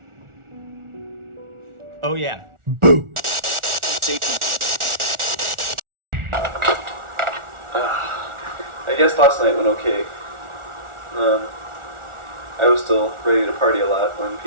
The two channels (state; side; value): late; left; 1.4 ms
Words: Oh, yeah. Boo! I guess last night went okay. I was still ready to party a lot when